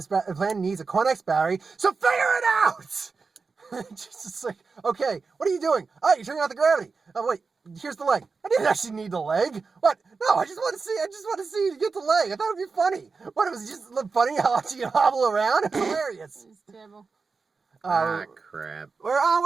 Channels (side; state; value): left; quieter; 4.6 dB